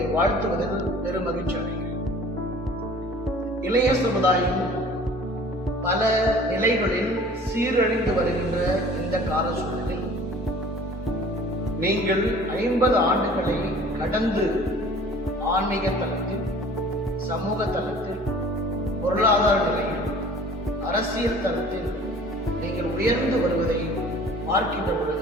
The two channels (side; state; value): both; normal; correlation 0.48